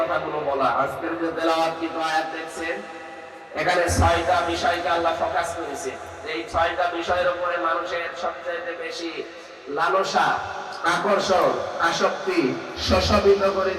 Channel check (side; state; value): both; identical; correlation 1.00